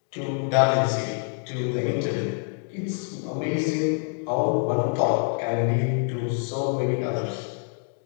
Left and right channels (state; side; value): silent; right; 58 dB below the other